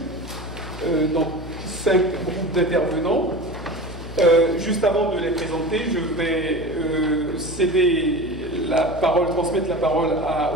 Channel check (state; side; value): noise; left; hum, 12 dB below the sound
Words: donc 5 groupes d'intervenants. Juste avant de les présenter, je vais transmettre la parole